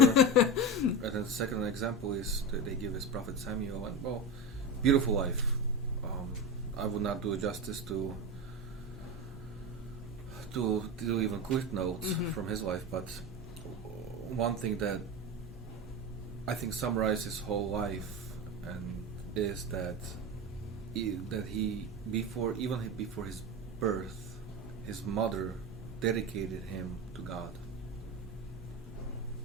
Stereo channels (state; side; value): normal; both; correlation 0.21